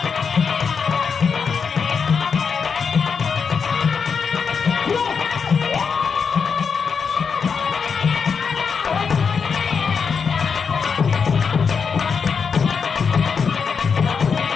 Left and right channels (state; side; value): quieter; right; 5.9 dB